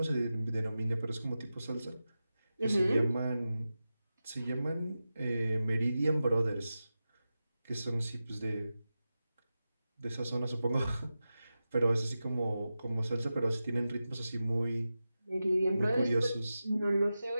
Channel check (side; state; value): both; inverted; correlation -0.93